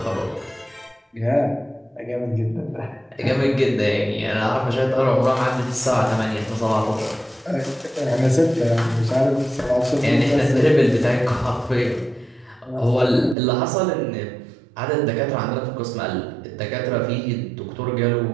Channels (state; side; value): drops out; left; at 13.4 s